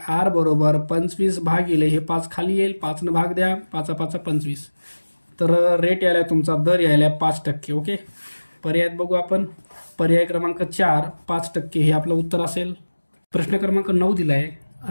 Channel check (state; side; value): inverted; both; correlation -1.00